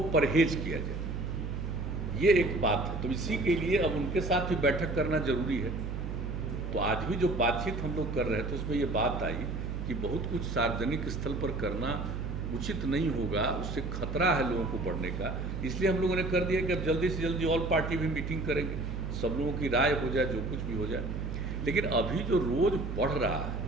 परहेज किया जाए, ये एक बात है। तो इसी के लिए अब उनके साथ भी बैठक करना जरूरी है। तो आज भी जो बातचीत हम लोग कर रहे थे उसमें ये बात आई कि बहुत कुछ सार्वजनिक स्थल पर करना उचित नहीं होगा, उससे खतरा है लोगों को बढ़ने का। इसलिए हम लोगों ने कर दिया कि अब जल्दी से जल्दी ऑल पार्टी भी मीटिंग करेंगे, सब लोगों की राय हो जाए, जो कुछ भी हो जाए। लेकिन अभी जो रोज़ बढ़ रहा है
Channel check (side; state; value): right; noise; hum, 4 dB below the sound